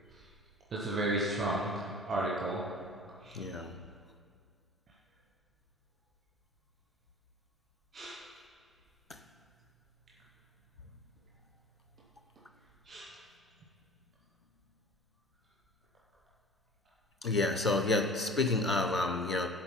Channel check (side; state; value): both; normal; correlation 0.43